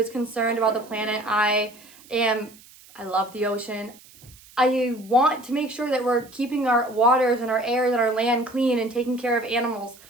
concerned about the planet. I love the ocean. I want to make sure that we're keeping our waters and our air and our land clean and taking care of animals.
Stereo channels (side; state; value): right; noise; hiss, 24 dB below the sound